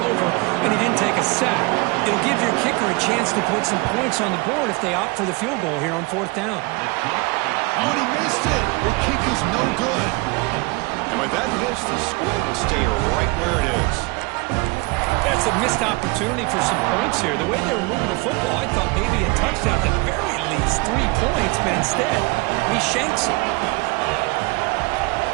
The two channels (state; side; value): quieter; left; 26.2 dB